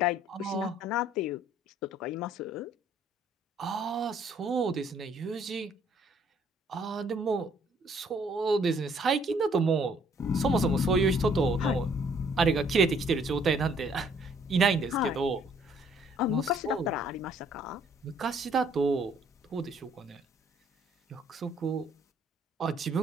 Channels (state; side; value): normal; both; correlation 0.63